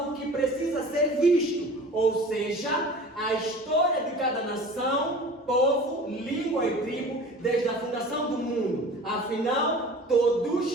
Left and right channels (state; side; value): normal; both; correlation 0.41